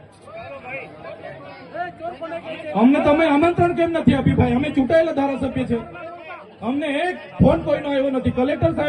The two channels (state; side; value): identical; both; correlation 1.00